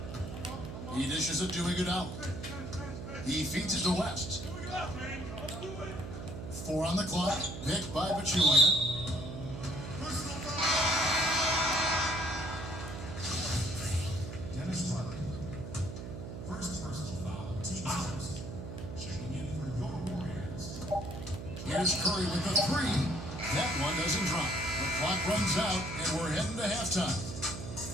He dishes it to Iguodala. He feeds it to West. 4 on the clock. Picked by Pachulia. Dennis Rodman. First personal foul. Team first. Checking in for your Warriors. Here's Curry with the 3. That one doesn't drop. The clock runs out, and we're heading to halftime.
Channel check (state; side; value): noise; right; hum, 8 dB below the sound